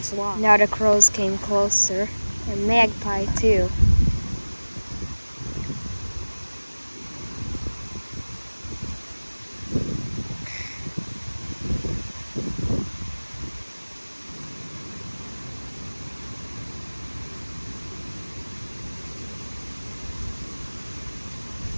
long. Now the crows came closer, and magpie too.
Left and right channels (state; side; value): inverted; both; correlation -1.00